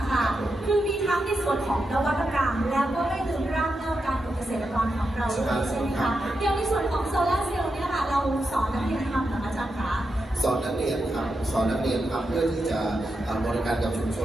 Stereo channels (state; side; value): normal; both; correlation 0.87